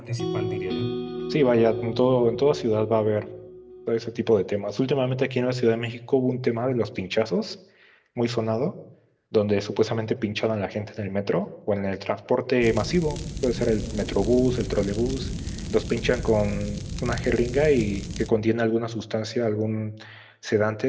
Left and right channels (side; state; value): both; identical; correlation 1.00